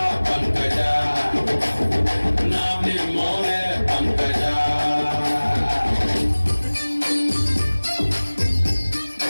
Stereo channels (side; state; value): both; inverted; correlation -1.00